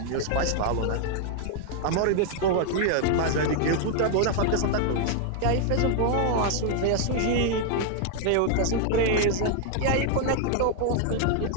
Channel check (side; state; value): both; different; correlation 0.00